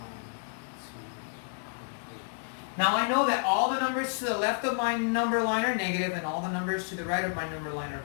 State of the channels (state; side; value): silent; right; digital silence